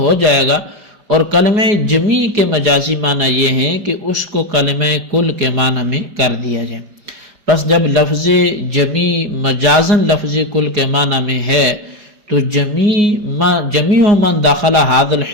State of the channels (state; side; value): late; left; 4.8 ms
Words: جائے گا، اور کلمہ جمی کے مجازی معنی یہ ہیں کہ اس کو کلمہ کل کے معنی میں کر دیا جائے۔ پس جب لفظ جمی مجازن لفظ کل کے معنی میں ہے تو جمیع من داخل ھذا